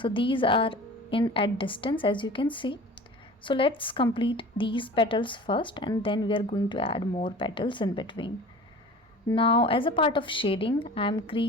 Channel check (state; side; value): normal; both; correlation 0.40